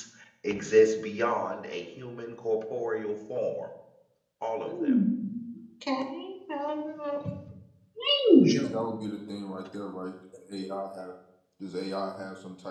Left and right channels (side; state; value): both; identical; correlation 1.00